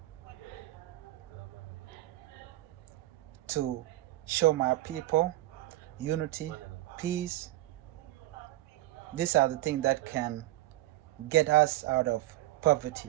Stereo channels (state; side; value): quieter; left; 17.0 dB